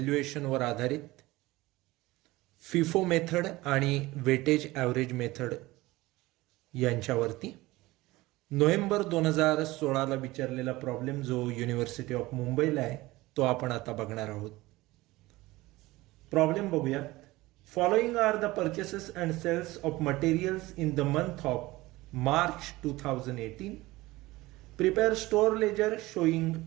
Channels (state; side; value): quieter; left; 19.4 dB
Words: आधारित फिफो मेथड आणि वेटेज ॲव्हरेज मेथड यांच्यावरती नोव्हेंबर 2016ला विचारलेला प्रॉब्लेम जो युनिव्हर्सिटी ऑफ मुंबईला आहे तो आपण आता बघणार आहोत. प्रॉब्लेम बघूयात. Following are the purchases and sales of materials in the month of March 2018. Prepare store ledger showing